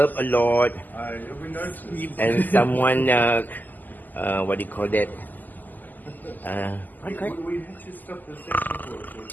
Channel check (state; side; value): late; right; 0.085 ms